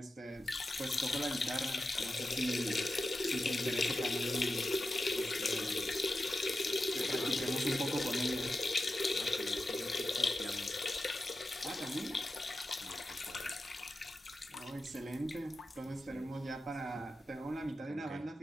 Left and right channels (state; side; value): normal; both; correlation 0.91